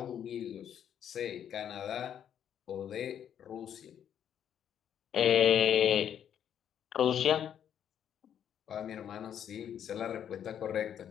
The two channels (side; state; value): right; quieter; 9.3 dB